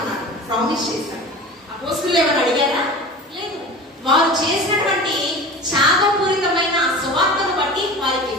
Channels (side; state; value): both; normal; correlation 0.36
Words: ప్రామిస్ చేశాడు. అపోస్తలులు ఎవరు అడిగారా? లేదు. వారు చేసినటువంటి త్యాగపూరితమైన సువార్తను బట్టి వారికి